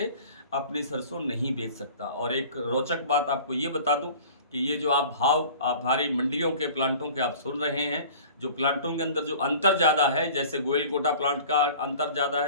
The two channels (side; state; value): both; inverted; correlation -0.44